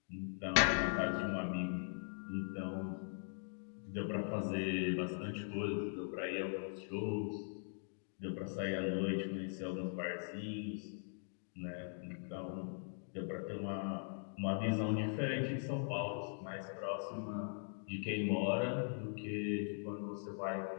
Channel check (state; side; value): silent; right; digital silence